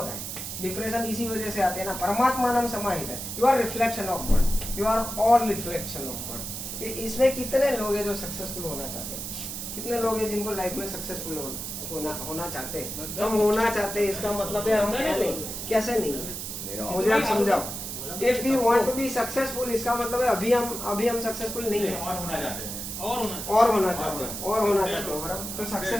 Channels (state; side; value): noise; right; hiss, 6 dB below the sound